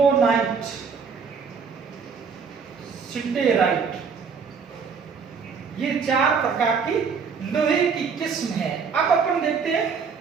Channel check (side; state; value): left; quieter; 5.7 dB